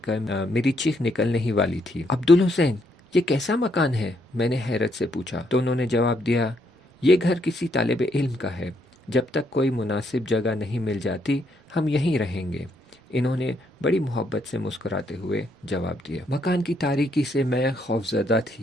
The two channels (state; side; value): normal; both; correlation 0.74